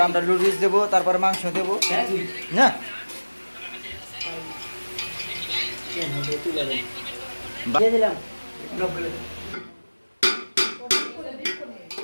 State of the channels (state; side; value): inverted; both; correlation -1.00